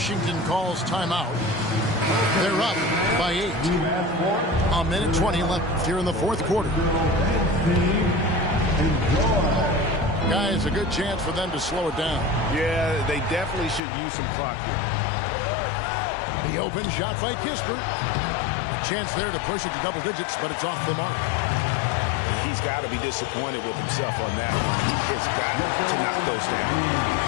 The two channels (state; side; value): drops out; right; at 13.8 s